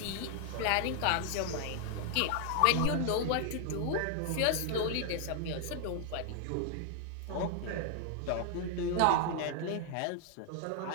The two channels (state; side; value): different; both; correlation 0.00